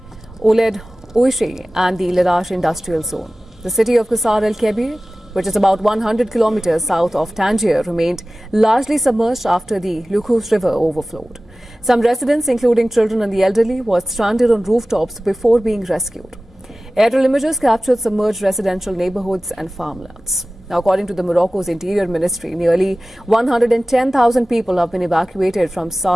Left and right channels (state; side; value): normal; both; correlation 0.97